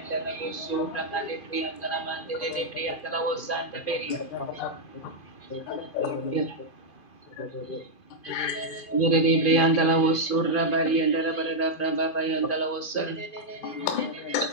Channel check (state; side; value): late; right; 2.5 ms